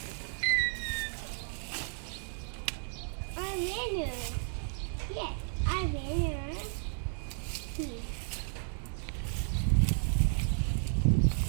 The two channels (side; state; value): left; silent; 56 dB below the other